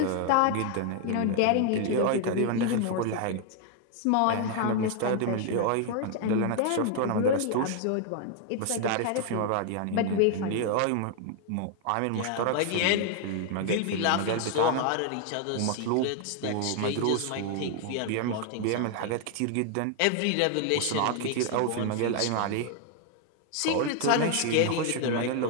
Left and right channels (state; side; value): different; both; correlation 0.00